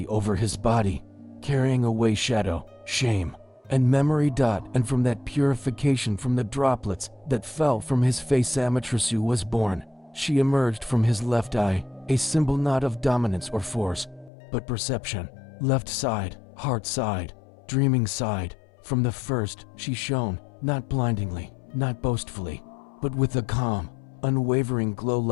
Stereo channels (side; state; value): right; drops out; at 14.3 s